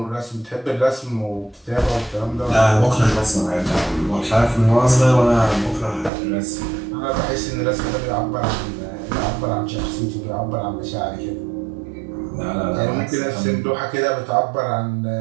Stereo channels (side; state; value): left; drops out; at 6.1 s